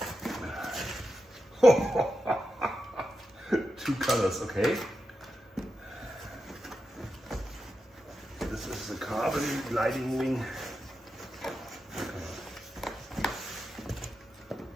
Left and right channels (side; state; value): both; normal; correlation 0.89